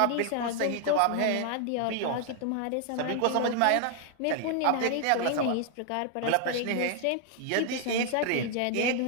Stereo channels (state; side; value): different; both; correlation 0.00